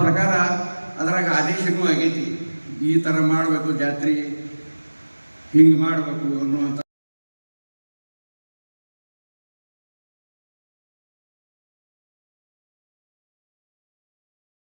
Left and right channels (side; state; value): both; inverted; correlation -1.00